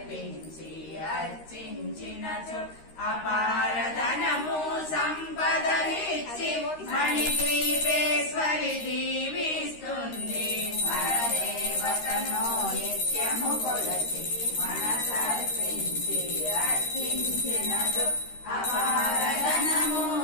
అర్చించినచో అపారధనము సంపదలిచ్చి మణిద్వీపేశ్వరి దీవిస్తుంది పరదేవతను నిత్యము కొలసి మనసర్పించి అర్చించినచో అపారధనము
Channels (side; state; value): right; late; 13 ms